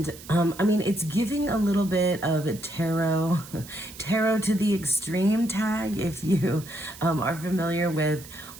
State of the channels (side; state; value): right; noise; hiss, 17 dB below the sound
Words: it's giving a little bit of tarot to the extreme tag. If you are familiar with